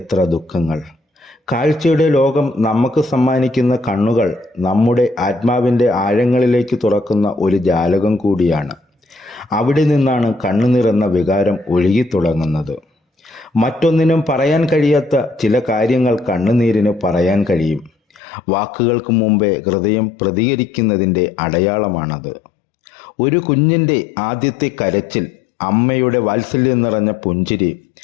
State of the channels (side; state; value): right; drops out; at 18.2 s